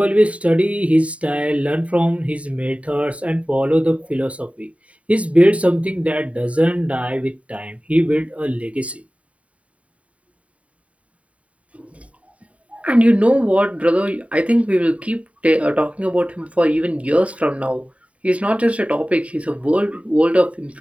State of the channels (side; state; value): left; late; 0.066 ms